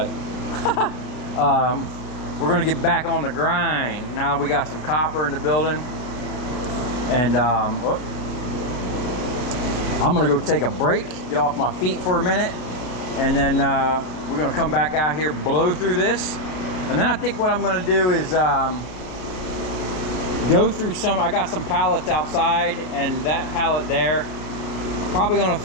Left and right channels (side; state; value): right; late; 32 ms